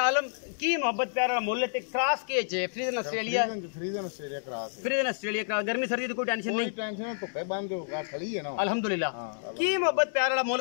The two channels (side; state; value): right; silent; 58 dB below the other